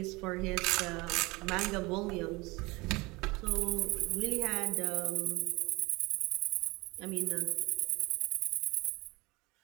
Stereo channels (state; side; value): quieter; left; 23.6 dB